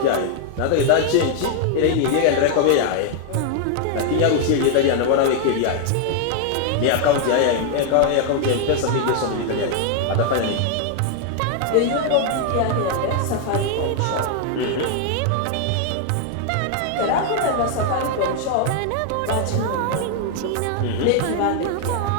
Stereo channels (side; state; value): both; different; correlation 0.00